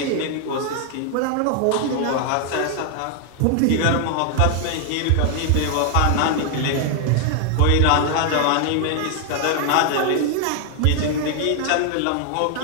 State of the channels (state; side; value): different; both; correlation 0.00